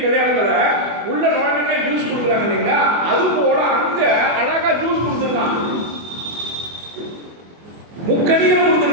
கல்யாணத்தில் உள்ள நுழைஞ்சே ஜூஸ் கொடுக்குறாங்க இல்லைங்களா, அது போல அங்க அழகா ஜூஸ் கொடுத்துருக்கான், முக்கணிகள்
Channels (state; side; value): late; left; 24 ms